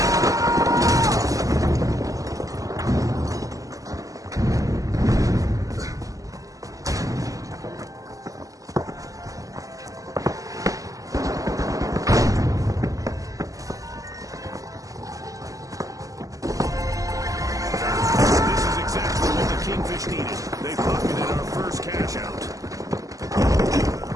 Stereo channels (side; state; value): left; late; 0.17 ms